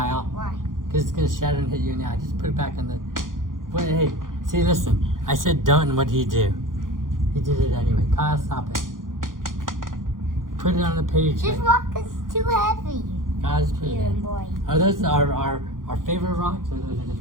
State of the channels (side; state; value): left; late; 0.90 ms